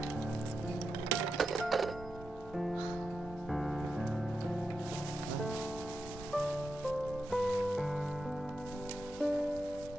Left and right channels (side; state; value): both; normal; correlation 0.88